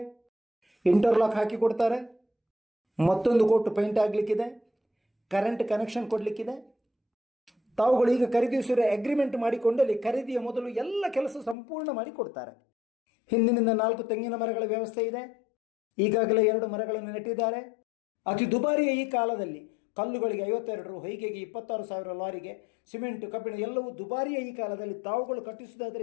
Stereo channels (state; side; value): drops out; right; at 11.6 s